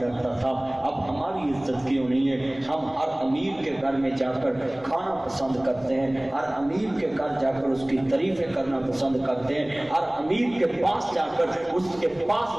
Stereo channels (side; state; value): left; noise; rumble, 25 dB below the sound